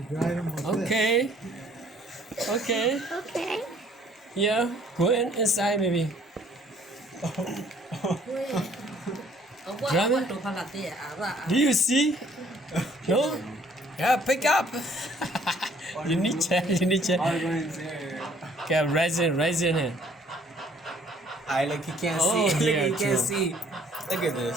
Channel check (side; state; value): both; normal; correlation 0.60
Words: drive them with this. okay. Okay. Okay. Yeah, go inside maybe. Drama? Do you see? No? Yeah, pick up. You need check. Okay, raising it. I like you can't Oh, see. yeah, Look, you can't true. see. Look at